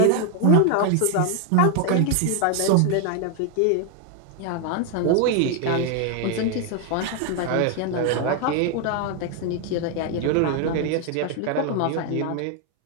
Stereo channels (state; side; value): different; both; correlation 0.01